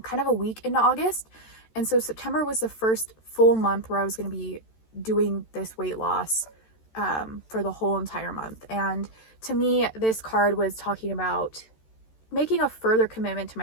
of a week into August. And so September was the first full month where I was going to be doing this weight loss for the whole entire month. And to me, this card was talking about making a further commitment to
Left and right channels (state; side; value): late; right; 13 ms